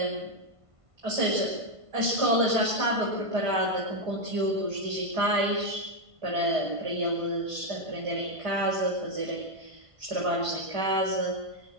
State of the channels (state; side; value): late; left; 1.5 ms